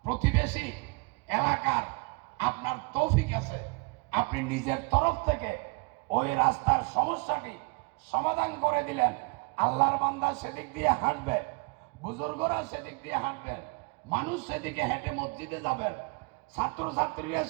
প্রতিবেশী এলাকার আপনার তৌফিক আছে, আপনি নিজের তরফ থেকে ওই রাস্তার সমস্যাটি সমাধান করে দিলেন। আল্লাহর বান্দা সেদিক দিয়ে হাঁটবে, বুজুর্গরা সেদিক দিয়ে হাঁটবেন, মানুষ সেদিকে হেঁটে মসজিদে যাবেন, ছাত্রছাত্রীরা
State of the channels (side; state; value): left; quieter; 30.5 dB